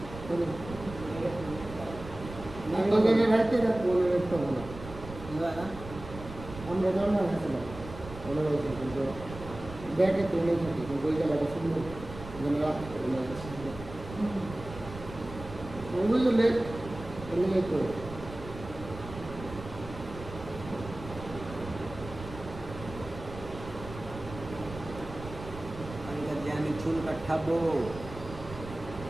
এবার না আমরা জানা হয়েছিলাম মনে হয়েছে কিন্তু ব্যাগে তো নেই থাকি কিন্তু ওই জায়গাটা সুন্দর যেন রাখতে ওগুলো লেট এমনি তো যে আমি চুল কাটাবো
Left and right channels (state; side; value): noise; right; rumble, 12 dB below the sound